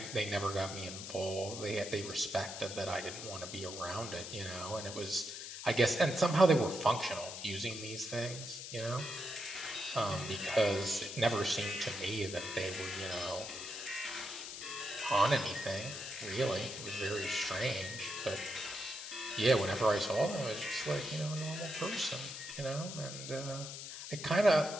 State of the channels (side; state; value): left; noise; hiss, 9 dB below the sound